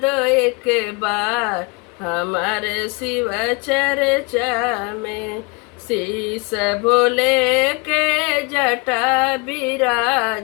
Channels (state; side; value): quieter; right; 29.1 dB